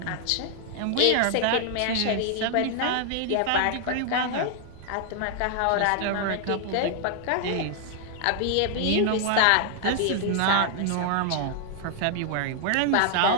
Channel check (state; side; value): different; both; correlation 0.00